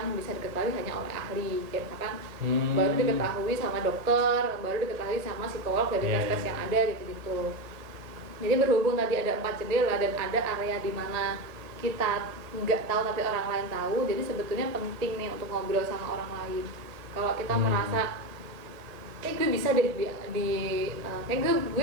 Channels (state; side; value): late; left; 1.8 ms